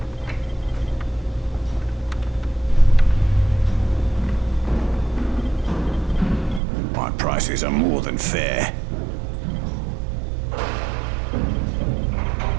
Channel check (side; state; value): left; drops out; at 6.6 s